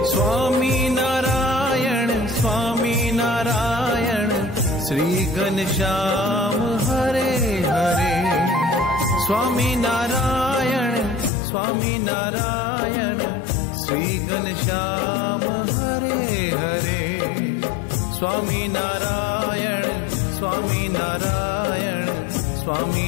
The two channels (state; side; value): drops out; right; at 11.3 s